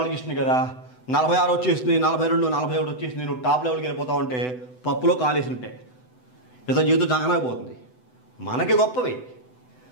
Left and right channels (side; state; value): right; late; 8.0 ms